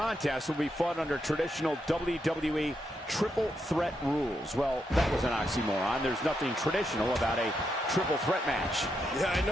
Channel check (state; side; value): normal; both; correlation 0.82